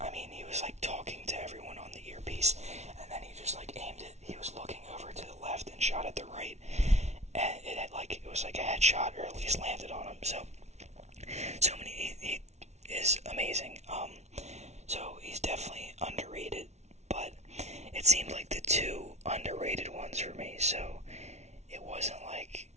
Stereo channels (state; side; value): late; left; 0.32 ms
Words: I mean, he was like talking to everyone on the earpiece, and then he just like aimed it. He was looking over to the left and shot at the right, and it was like a headshot, or at least landed on him. So he is amazing. So he's definitely underrated, but it seemed like the two underrated ones for me. So it wasn't like,